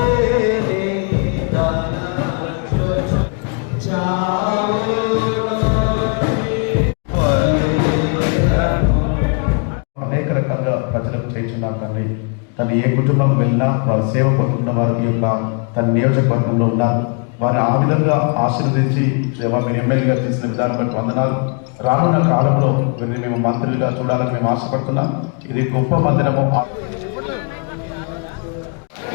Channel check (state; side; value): quieter; right; 38.4 dB